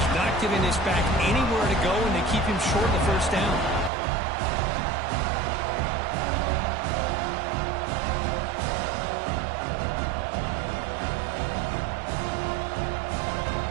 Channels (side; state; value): left; drops out; at 3.9 s